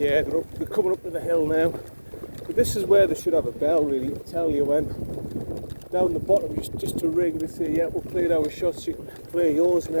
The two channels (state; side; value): inverted; both; correlation -1.00